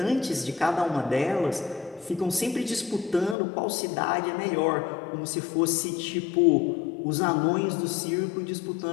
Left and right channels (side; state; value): right; drops out; at 3.4 s